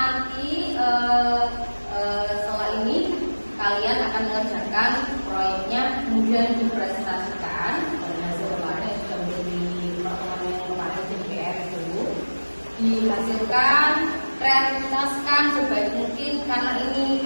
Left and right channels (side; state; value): both; inverted; correlation -1.00